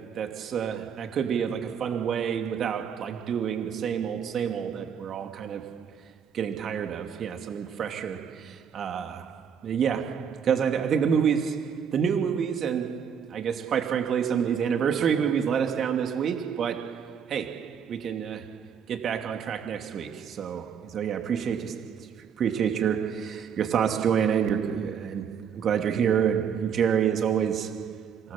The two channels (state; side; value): quieter; left; 7.5 dB